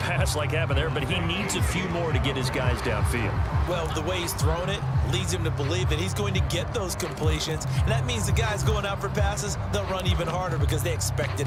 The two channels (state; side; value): identical; both; correlation 1.00